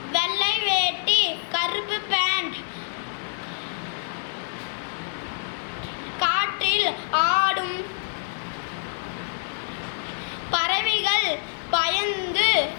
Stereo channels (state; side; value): silent; right; digital silence